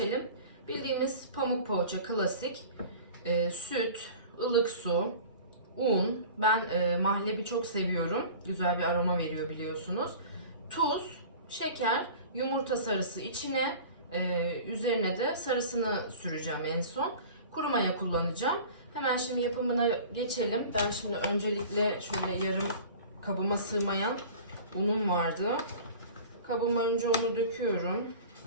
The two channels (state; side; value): inverted; both; correlation -0.41